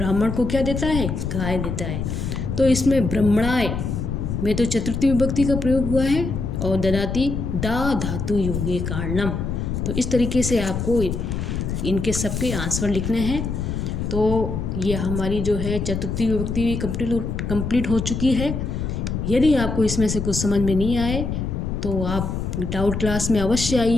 को क्या देता है, गाय देता है। तो इसमें ब्राह्मणाय में तो चतुर्थी विभक्ति का प्रयोग हुआ है, और ददाति दा धातु योगे कारणम। तो इस तरीके से आपको इनके सबके आंसर लिखने हैं। तो ये हमारी जो है चतुर्थी विभक्ति कंप्लीट हो चुकी है। यदि आपको इसमें से कुछ समझ में नहीं आए तो आप डाउट क्लास में अवश्य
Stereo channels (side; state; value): left; noise; rumble, 3 dB below the sound